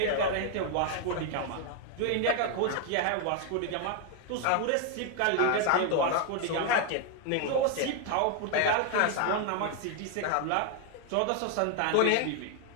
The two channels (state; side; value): different; both; correlation 0.00